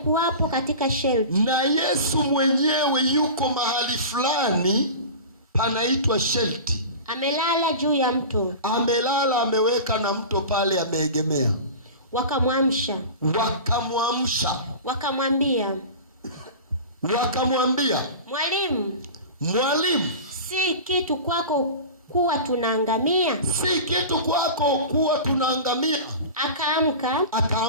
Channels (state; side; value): inverted; both; correlation -0.33